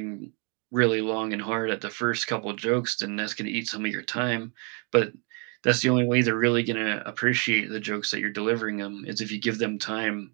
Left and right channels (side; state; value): left; quieter; 36.7 dB